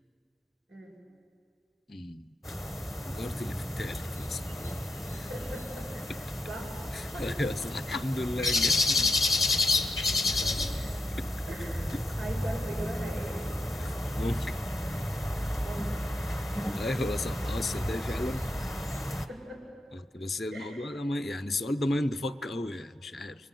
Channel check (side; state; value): both; normal; correlation 0.85